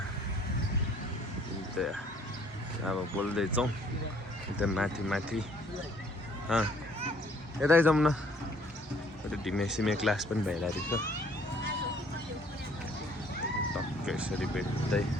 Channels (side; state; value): both; normal; correlation 0.60